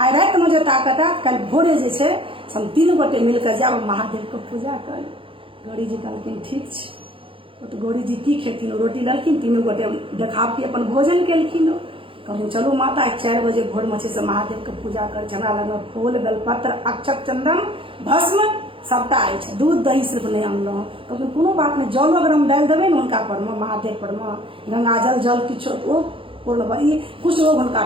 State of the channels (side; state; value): left; late; 0.26 ms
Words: राति में जे ताकत है, कल भोरे जे छै हम 3 गोटे मिलकर जाब महादेव के पूजा कर। गौरी जी कहलखिन ठीक छै। तो गौरी जी की खेथिन? रोटी लेलखिन, 3 गोटे देखावटी अपन भोजन केलखिन। कहलिन चलू माता 4 बजे भोर में से महादेव के पूजा कर। हमरा लग फूल, बेलपत्र, अक्षत, चंदन, भस्म सबटा अछि, दूध दही सिर्फ नहीं अनलहुँ। कहलखिन कोनो बात नहीं, जल अगर हम डालि देबै ने हुनका पर में, महादेव पर में, गंगा जल किछो ओ पूर्ण ई कुछ रोग हुनका